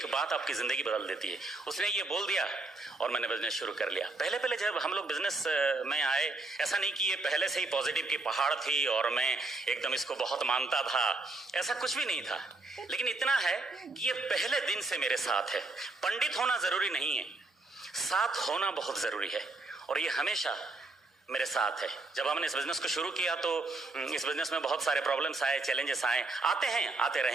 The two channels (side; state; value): left; quieter; 3.2 dB